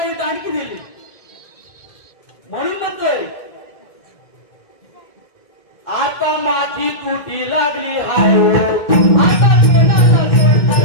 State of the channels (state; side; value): late; right; 2.1 ms